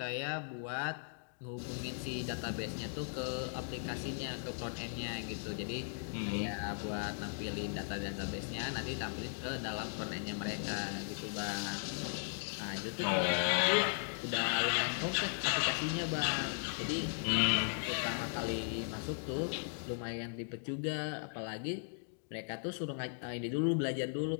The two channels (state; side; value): silent; right; digital silence